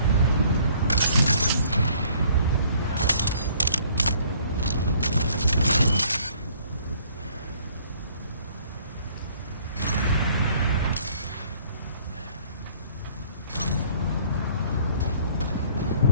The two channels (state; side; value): inverted; both; correlation -0.59